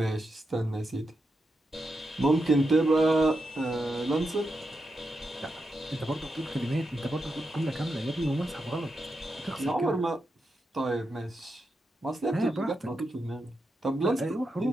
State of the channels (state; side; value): normal; both; correlation 0.86